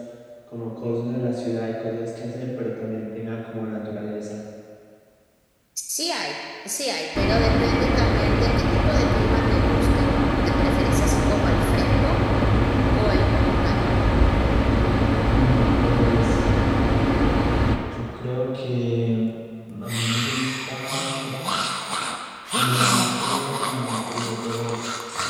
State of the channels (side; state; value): both; identical; correlation 1.00